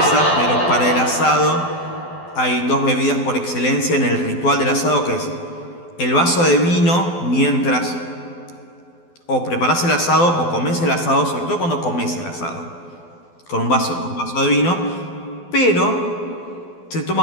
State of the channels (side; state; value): right; late; 12 ms